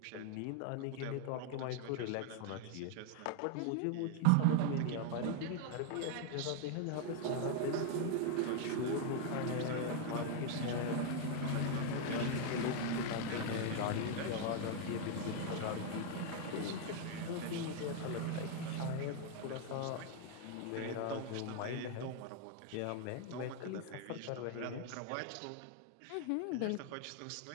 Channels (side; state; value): both; different; correlation 0.00